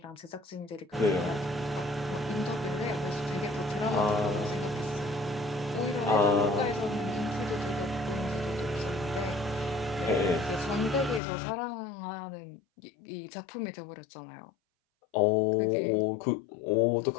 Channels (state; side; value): drops out; right; at 11.2 s